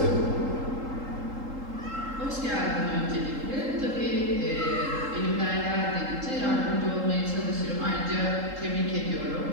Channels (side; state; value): left; late; 3.8 ms